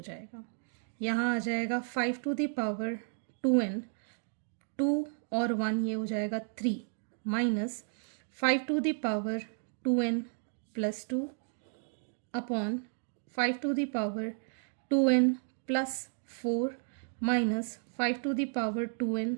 जाएगा. यहाँ आ जाएगा 5 टू द पावर 2n, 2 और 1 ये हो जाएगा 3 minus 5 to the power 2n plus 2 upon 5 to the power 2n plus 4 minus 5 to the power 2n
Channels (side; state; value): left; silent; digital silence